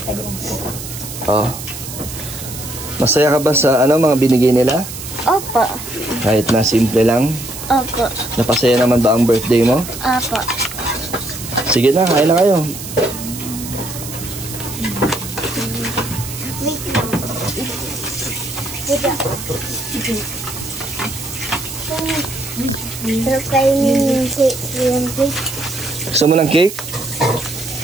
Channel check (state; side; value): noise; right; hiss, 10 dB below the sound